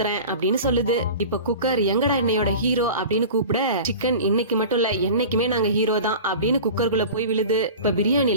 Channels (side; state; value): both; inverted; correlation -0.36